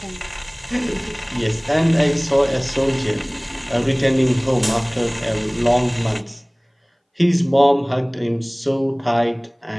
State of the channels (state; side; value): identical; both; correlation 1.00